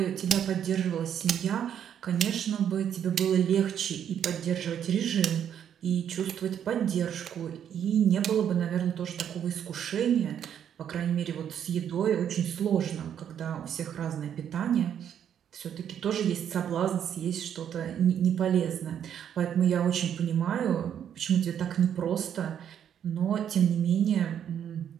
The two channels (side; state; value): left; quieter; 9.2 dB